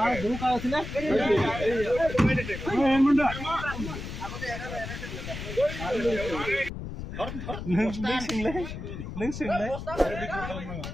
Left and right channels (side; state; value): left; noise; rumble, 8 dB below the sound